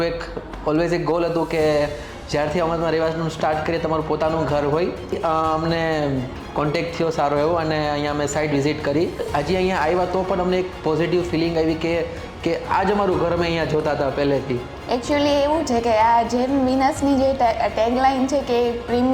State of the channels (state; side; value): identical; both; correlation 1.00